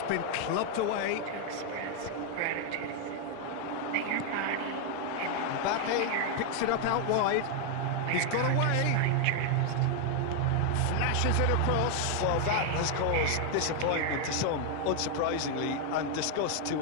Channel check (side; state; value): both; different; correlation 0.00